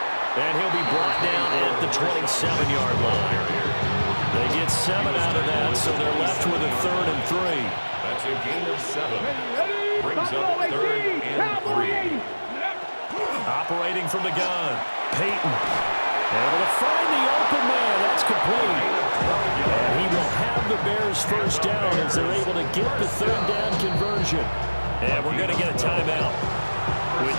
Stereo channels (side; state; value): both; inverted; correlation -1.00